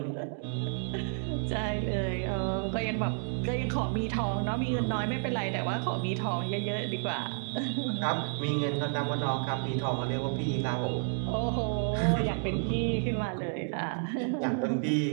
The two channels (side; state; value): left; silent; digital silence